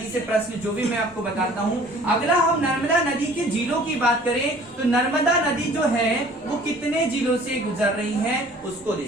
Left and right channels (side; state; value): both; normal; correlation 0.51